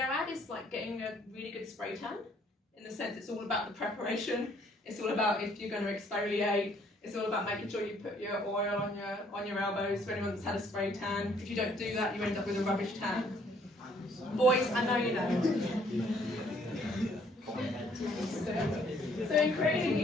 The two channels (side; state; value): both; normal; correlation 0.64